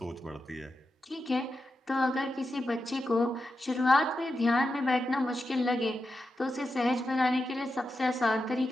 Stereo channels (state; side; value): normal; both; correlation 0.89